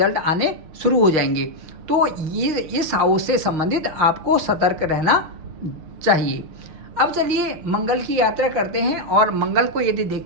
आने शुरू हो जाएंगे। तो ये इस हाउस से संबंधित आपको सतर्क रहना चाहिए। अब चलिए मंगल की यात्रा करते हैं और मंगल को यदि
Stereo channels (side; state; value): left; late; 6.4 ms